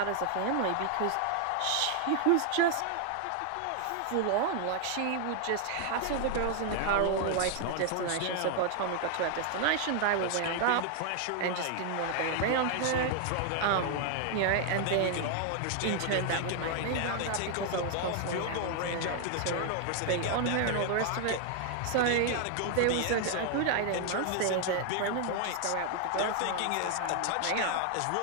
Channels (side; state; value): both; different; correlation 0.00